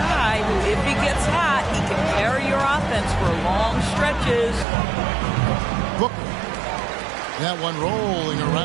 who, if he gets hot, he can carry your offense for long stretches. Booker. That one rolling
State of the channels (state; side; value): drops out; left; at 4.7 s